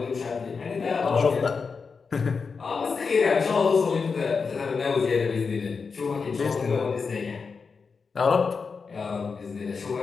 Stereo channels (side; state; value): right; quieter; 5.1 dB